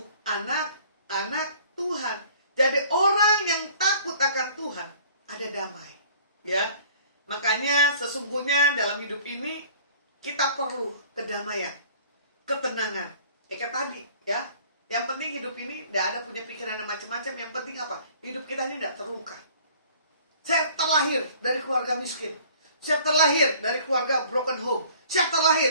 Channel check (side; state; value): both; inverted; correlation -0.51